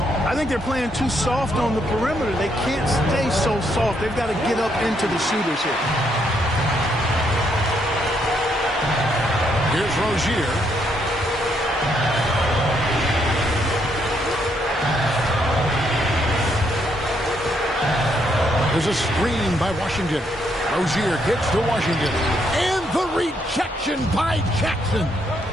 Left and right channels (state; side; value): normal; both; correlation 0.74